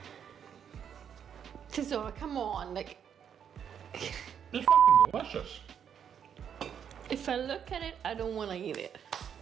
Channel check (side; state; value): left; quieter; 8.3 dB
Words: So come on, like It's fucking delicious. if I look at it, I don't want to eat it.